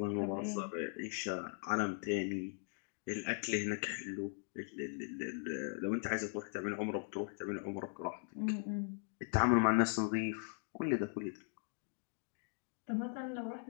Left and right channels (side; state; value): right; silent; 51 dB below the other